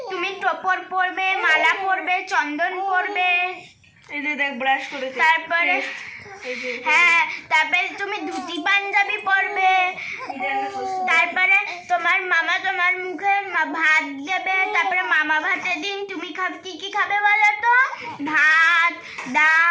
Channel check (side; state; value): both; identical; correlation 1.00